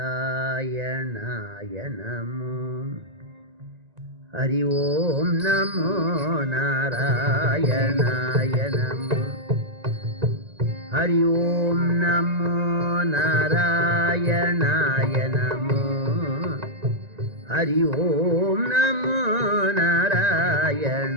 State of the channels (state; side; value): late; left; 1.9 ms